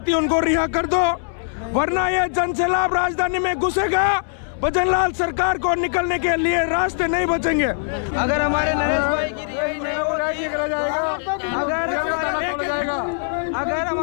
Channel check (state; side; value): silent; right; 65 dB below the other